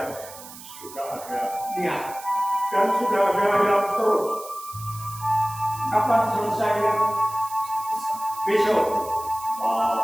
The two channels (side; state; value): right; noise; hiss, 16 dB below the sound